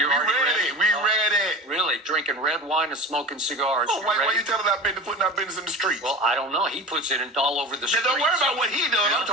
we already ready. We ready. Really, drinking red wine and smoking cigars. Oh, why you telling that business putting our business in the streets? Well, I don't know. He puts it in all over the streets. Don't worry about what he does. I'm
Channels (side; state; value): both; normal; correlation 0.32